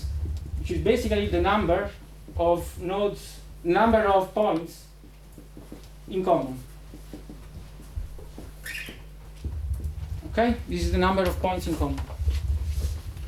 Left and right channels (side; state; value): both; identical; correlation 1.00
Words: which is basically the number of nodes, number of points in common. Okay, this is the number of points in common.